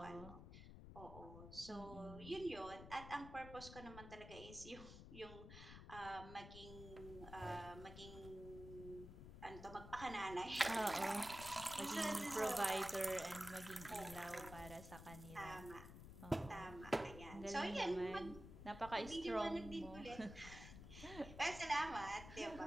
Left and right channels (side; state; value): left; noise; rumble, 12 dB below the sound